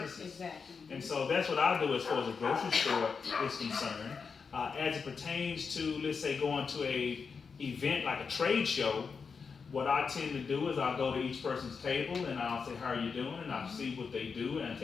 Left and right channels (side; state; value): right; quieter; 5.5 dB